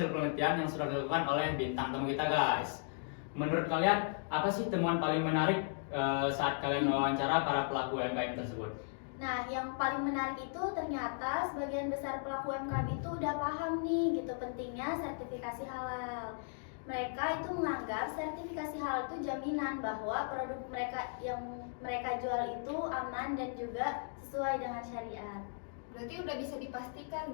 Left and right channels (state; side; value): silent; right; digital silence